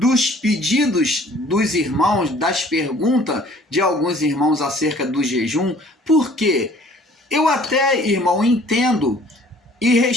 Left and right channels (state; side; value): normal; both; correlation 0.54